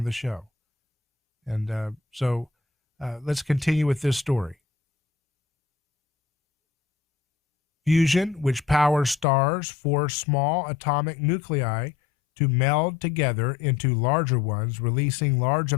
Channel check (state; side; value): drops out; right; at 9.2 s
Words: the show. And so let's continue with this story. Fusion, which powers stars, force small atomic nuclei to meld together into larger ones, releasing large